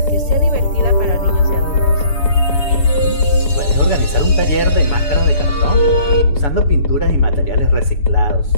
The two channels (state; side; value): late; right; 6.9 ms